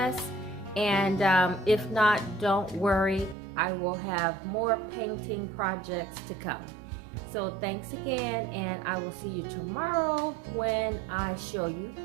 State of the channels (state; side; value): drops out; left; at 3.4 s